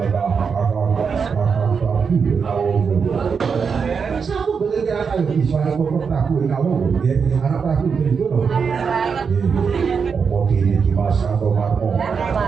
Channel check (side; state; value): left; quieter; 5.9 dB